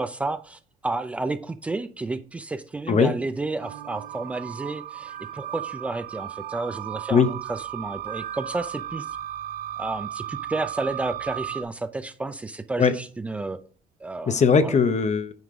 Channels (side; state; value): both; normal; correlation 0.55